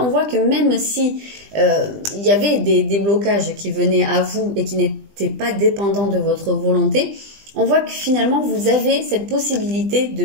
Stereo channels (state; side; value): late; left; 20 ms